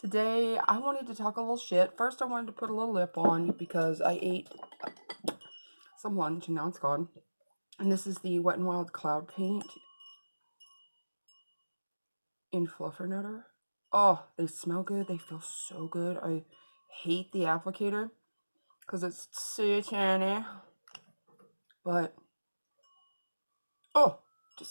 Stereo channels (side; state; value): both; inverted; correlation -1.00